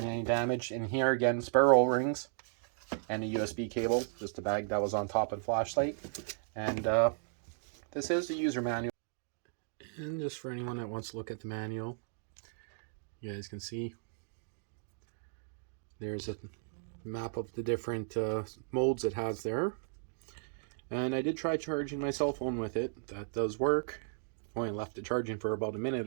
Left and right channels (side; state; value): left; silent; digital silence